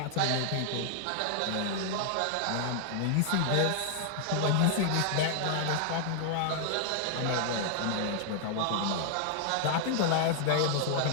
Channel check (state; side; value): different; both; correlation 0.00